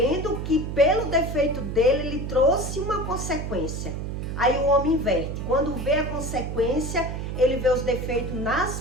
que pelo defeito dele, ele trouxe uma consequência. Aí o homem inverte. Quando vê a consequência, ele vê os defeitos nas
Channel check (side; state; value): right; noise; hum, 4 dB below the sound